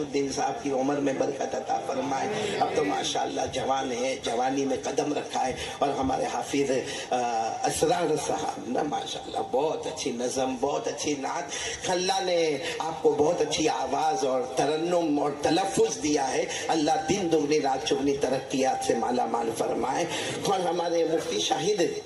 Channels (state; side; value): identical; both; correlation 1.00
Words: صاحب کی عمر میں برکت عطا فرمائے، اب تو ماشاءاللہ جوان ہے، جوانی میں قدم رکھا ہے، اور ہمارے حافظ اسرار صاحب نا ماشاءاللہ بہت اچھی نظم، بہت اچھی نعت، اللہ نے آپ کو بہت اچھی آواز اور ترنم اور تلفظ دیا ہے، اللہ دن دگنی رات چگنی ترقیات سے مالا مال فرمائے۔ اور ہمارے مفتی شاہد